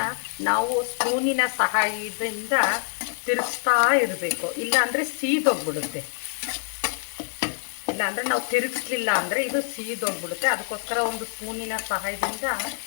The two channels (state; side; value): silent; right; digital silence